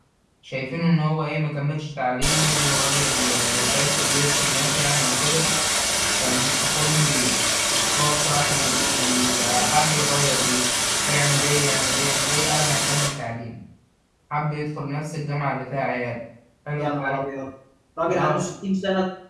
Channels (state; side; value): identical; both; correlation 1.00